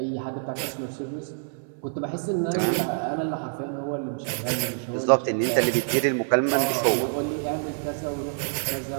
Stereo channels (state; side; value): silent; left; 61 dB below the other